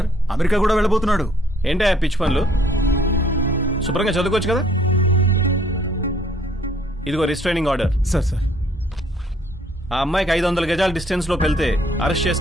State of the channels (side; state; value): both; normal; correlation 0.62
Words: అమెరికా కూడా వెళ్ళబోతున్నాడు. ఏంటా పిచ్చి పనులు? శుభ్రంగా చదువుకోవచ్చు కదా. ఇదిగో రిస్ట్రైనింగ్ ఆర్డర్. సార్ సార్, ఆ అమ్మాయికి 500 గజాల డిస్టెన్స్ లో వెళ్తే అరెస్ట్